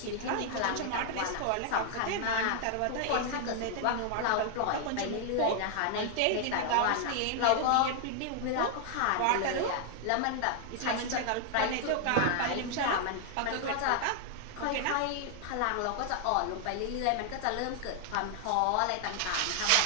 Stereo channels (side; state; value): both; different; correlation 0.00